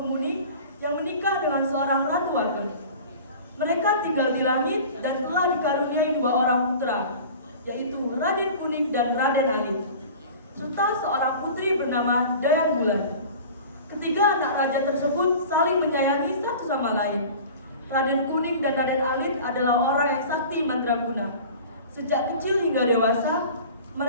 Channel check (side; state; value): both; inverted; correlation -0.40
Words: yang menikah dengan seorang ratu ageng. Mereka tinggal di langit dan telah dikaruniai 2 orang putra, yaitu Raden Kuning dan Raden Alit, serta seorang putri bernama Dayang Bulan. Ketiga anak raja tersebut saling menyayangi satu sama lain. Raden Kuning dan Raden Alit adalah orang yang sakti mandraguna. Sejak kecil hingga dewasa,